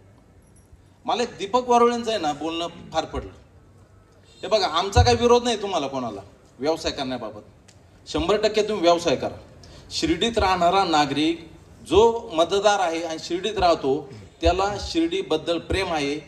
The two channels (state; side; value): identical; both; correlation 1.00